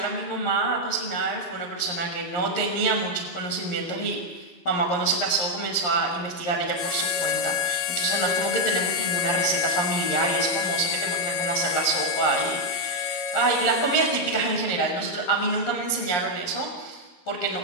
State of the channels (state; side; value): late; right; 11 ms